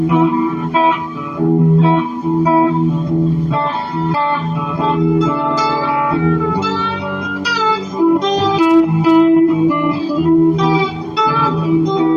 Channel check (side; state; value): both; identical; correlation 1.00